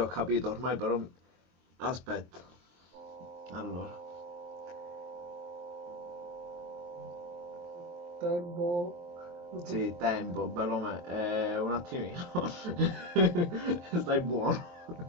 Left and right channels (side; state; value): left; late; 23 ms